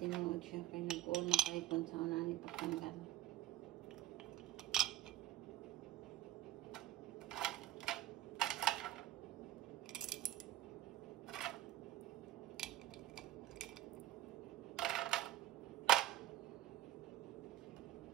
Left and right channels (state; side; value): quieter; left; 14.3 dB